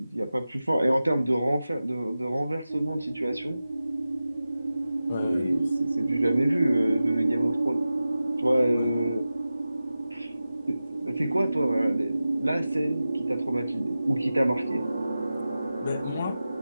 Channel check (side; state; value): both; inverted; correlation -0.94